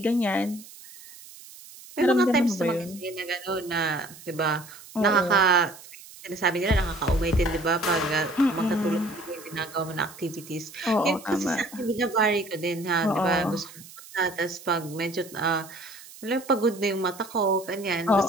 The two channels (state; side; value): noise; right; hiss, 18 dB below the sound